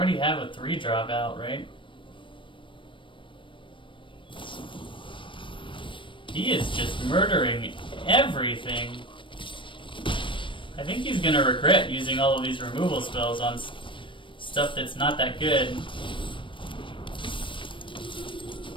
have a 3-drop out, right? He is just murdering everything. I think he's gonna regret using all of these removal spells on stuff that's not that good.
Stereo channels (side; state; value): right; late; 0.25 ms